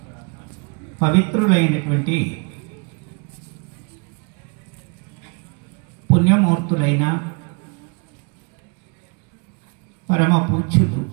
పవిత్రులైనటువంటి పుణ్యమూర్తులైన పరమ పూజ్యులు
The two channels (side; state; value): left; quieter; 34.1 dB